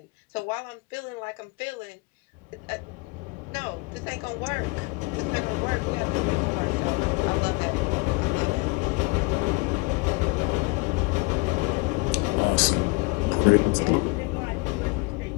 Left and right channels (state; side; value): quieter; right; 26.6 dB